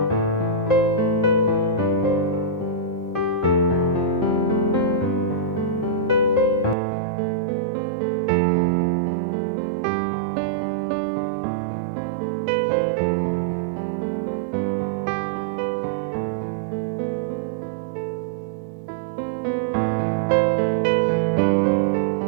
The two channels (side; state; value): left; drops out; at 6.8 s